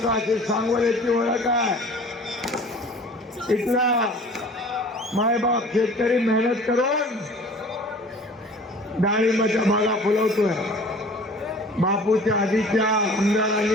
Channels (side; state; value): both; normal; correlation 0.46